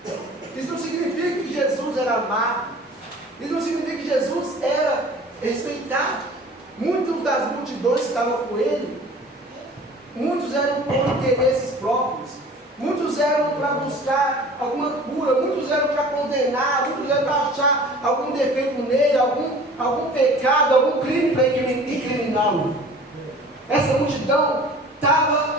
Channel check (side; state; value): both; normal; correlation 0.45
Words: Isso não significa que Jesus era amado. Isso não significa que Jesus era respeitado. Muitas das multidões que estavam com ele, muitos eram por interesses próprios, muitos eram para buscar alguma cura, muitos eram para condenar, muitos eram para achar algum defeito nele, algum pecado, algum crime para incriminá-lo. Essa multidão